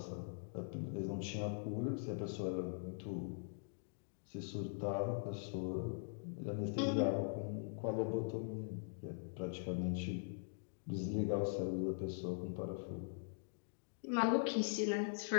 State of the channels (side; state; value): right; silent; digital silence